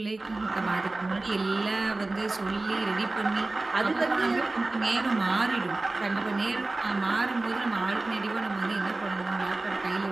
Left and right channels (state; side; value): quieter; left; 3.1 dB